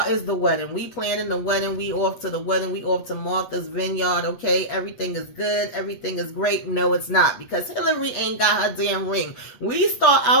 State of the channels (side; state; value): right; late; 8.3 ms